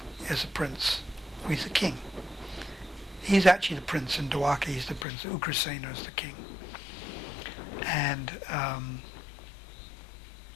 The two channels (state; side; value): drops out; right; at 5.1 s